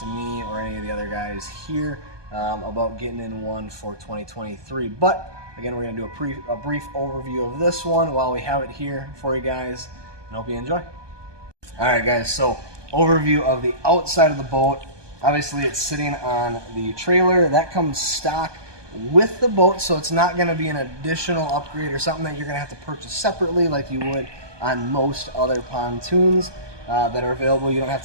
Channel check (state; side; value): late; left; 1.2 ms